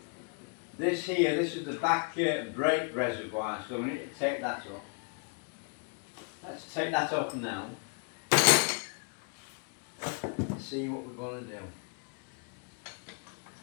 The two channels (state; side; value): quieter; right; 39.7 dB